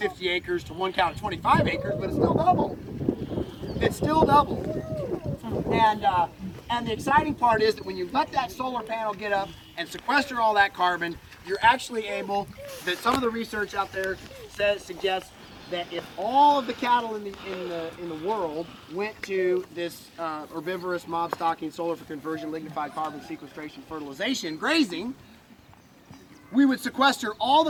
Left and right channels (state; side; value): identical; both; correlation 1.00